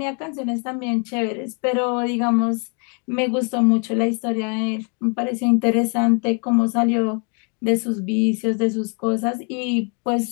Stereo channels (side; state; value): right; quieter; 38.1 dB